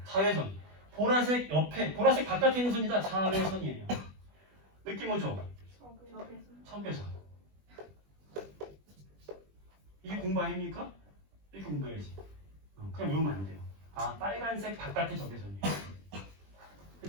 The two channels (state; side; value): late; left; 20 ms